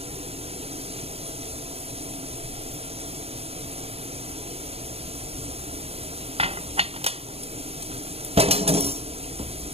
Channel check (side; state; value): left; late; 0.29 ms